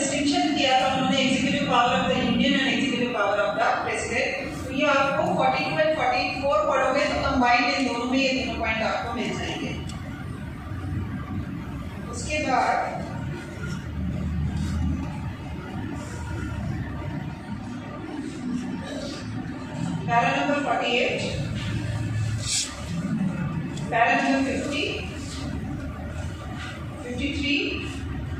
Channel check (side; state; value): both; identical; correlation 1.00